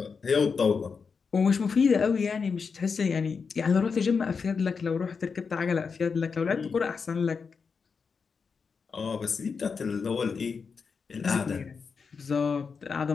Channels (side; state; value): right; quieter; 5.4 dB